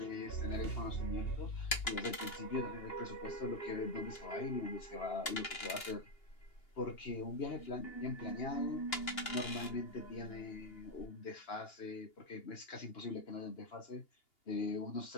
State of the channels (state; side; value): late; right; 2.9 ms